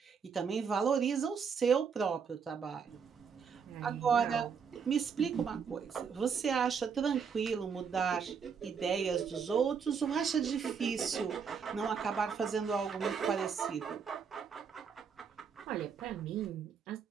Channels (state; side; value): quieter; left; 6.4 dB